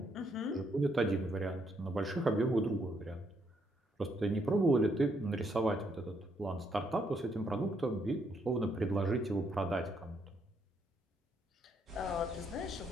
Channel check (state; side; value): normal; both; correlation 0.74